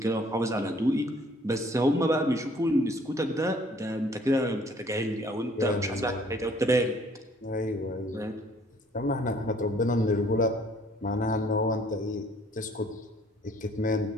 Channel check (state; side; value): normal; both; correlation 0.59